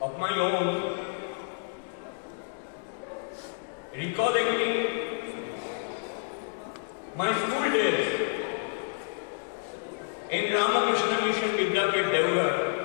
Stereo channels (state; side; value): silent; right; digital silence